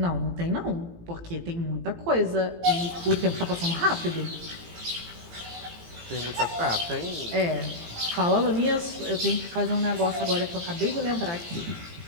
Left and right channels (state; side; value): late; left; 18 ms